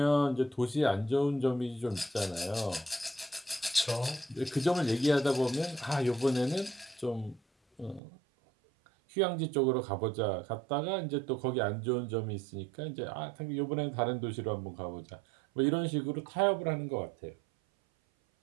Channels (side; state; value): left; drops out; at 8.0 s